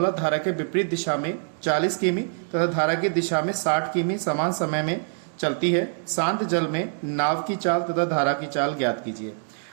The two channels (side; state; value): left; silent; digital silence